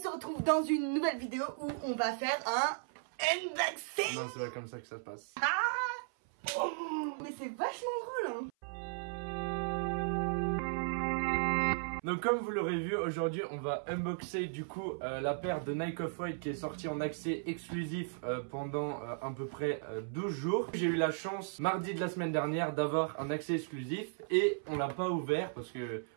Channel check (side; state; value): left; silent; 54 dB below the other